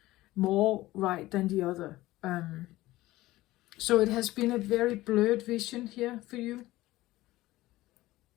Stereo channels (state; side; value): quieter; right; 17.4 dB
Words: more right than the other. So it has been a very blurred vision here for you.